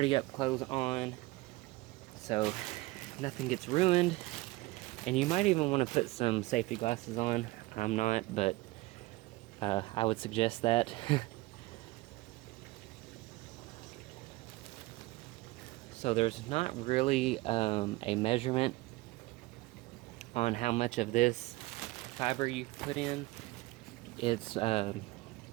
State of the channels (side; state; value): left; quieter; 20.4 dB